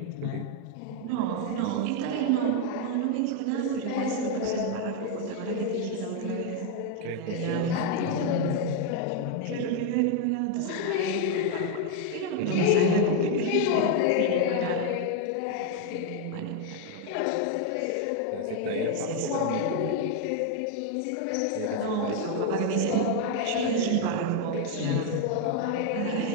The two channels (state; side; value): different; both; correlation 0.01